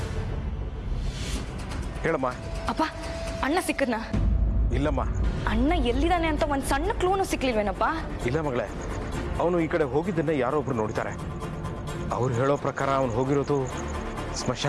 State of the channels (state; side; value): identical; both; correlation 1.00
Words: ಹೇಳಮ್ಮ. ಅಪ್ಪ, ಅಣ್ಣ ಸಿಕ್ಕದ್ನ? ಇಲ್ಲಮ್ಮ. ಅಣ್ಣ ಎಲ್ಲಿದ್ದಾನೆ ಅಂತ ಒಂದು ಸಣ್ಣ ಕ್ಲೂನು ಸಿಕ್ಲಿಲ್ವೇನಪ್ಪ? ಇಲ್ಲ ಮಗಳೇ, ಅವನು ಈ ಕಡೆ ಹೋಗಿದ್ದನ್ನ ಯಾರೋ ಒಬ್ರು ನೋಡ್ತಾರೆ. ಅವ್ರು ಹೇಳೋ ಪ್ರಕಾರ ಅವನು ಹೋಗಿರೋದು